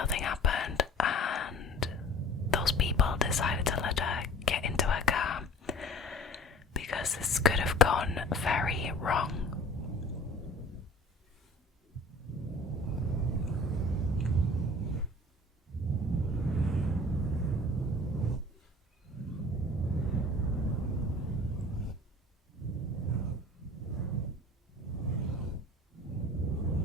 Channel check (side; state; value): both; normal; correlation 0.45